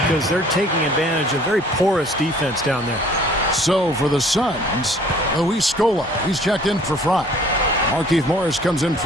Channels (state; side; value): normal; both; correlation 0.54